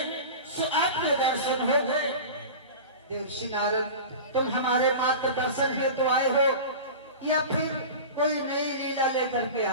सो आपके दर्शन हो गए। देवर्षि नारद, तुम हमारे मार्गदर्शन हेतु तो आए हो या फिर कोई नई लीला लेकर के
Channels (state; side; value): inverted; both; correlation -0.32